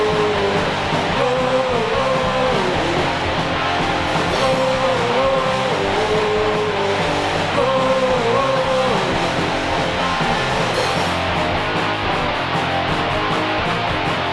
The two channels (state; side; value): identical; both; correlation 1.00